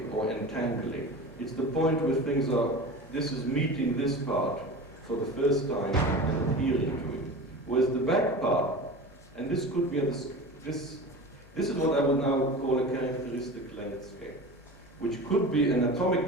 or entangling. It's the point where things are, this is meeting this part for the first time and adhering to it. Whereas the back part, and this could be, this is what I would now call a characteristic length scale, which could be an atomic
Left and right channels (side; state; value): both; normal; correlation 0.33